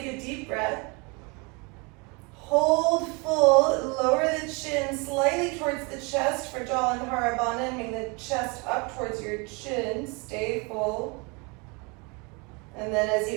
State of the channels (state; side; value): quieter; left; 29.7 dB